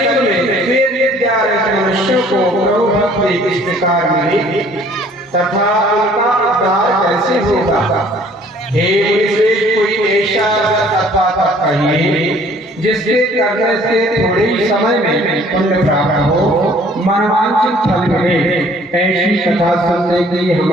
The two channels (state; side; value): normal; both; correlation 0.56